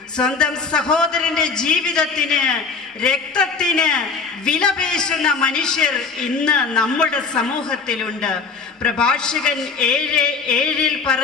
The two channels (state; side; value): quieter; right; 4.8 dB